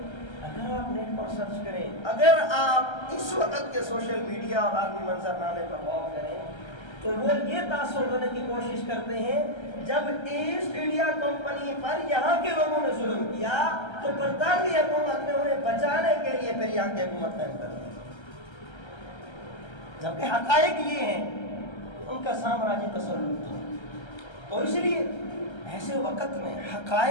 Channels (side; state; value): right; late; 1.3 ms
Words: اگر آپ نیٹ پر سرچ کریں، اگر آپ اس وقت کے سوشل میڈیا اور عالمی منظرنامے پر غور کریں تو وہ یہ تاثر دینے کی کوشش کرتے ہیں جب ایسٹ انڈیا کمپنی پر یہاں کے لوگوں نے ظلم کیا تو برطانوی حکومت نے انہیں بچانے کے لیے پھر یہاں کی حکومت قائم کر دی، جبکہ حقائق یہ ہیں ان کا سامراجی تسلط تھا۔ تو اس لیے ایسے وقت میں